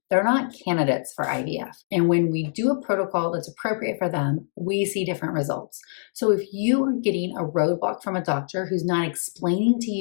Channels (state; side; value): silent; right; digital silence